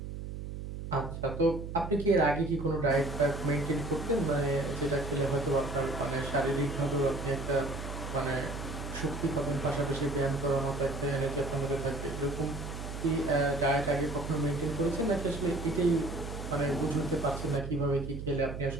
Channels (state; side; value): noise; right; hum, 7 dB below the sound